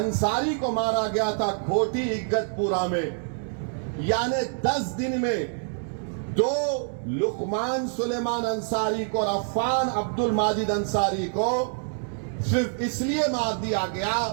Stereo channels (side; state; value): left; silent; digital silence